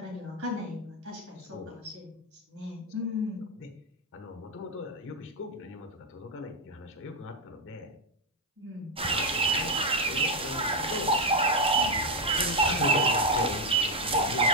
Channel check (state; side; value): normal; both; correlation 0.04